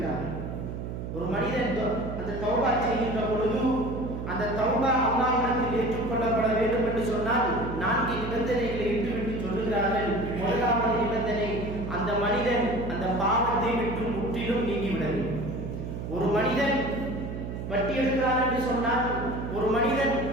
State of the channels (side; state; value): right; noise; hum, 6 dB below the sound